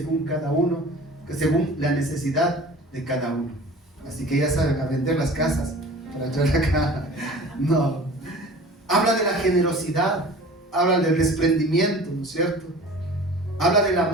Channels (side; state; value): both; normal; correlation 0.42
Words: cada uno, según la necesidad de cada uno. Así que ya saben, a vender las casas para traer acá. No. Habla de la generosidad, habla del desprendimiento, ¿no es cierto? Habla del